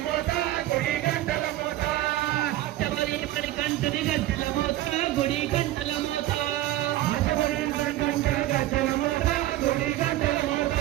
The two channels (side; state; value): left; quieter; 15.1 dB